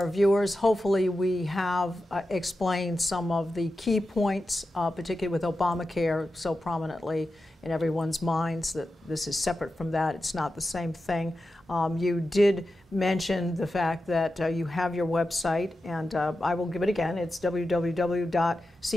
viewers. Hopefully we have explained some of the key points, particularly with Obamacare so prominently in everyone's minds, that this is separate from that. It's not the same thing. You did mention the fact that you have your website, and I will give it again. It's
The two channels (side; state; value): both; normal; correlation 0.91